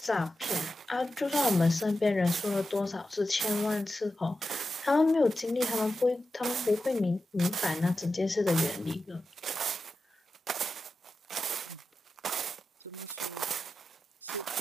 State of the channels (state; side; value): normal; both; correlation 0.91